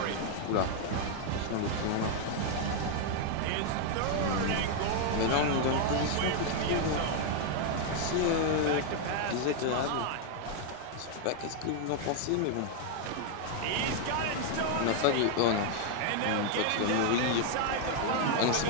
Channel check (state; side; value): different; both; correlation 0.00